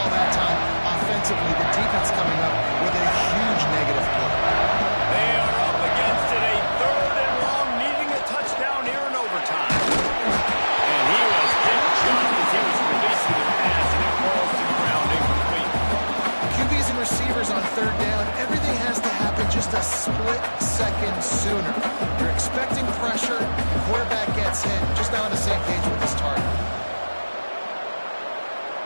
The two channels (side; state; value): both; inverted; correlation -1.00